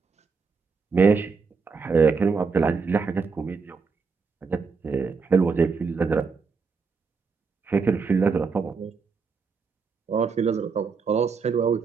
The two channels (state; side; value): quieter; left; 5.0 dB